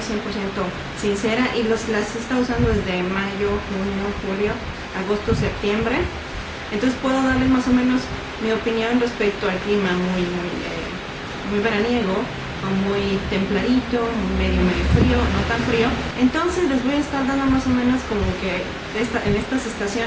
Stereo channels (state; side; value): identical; both; correlation 1.00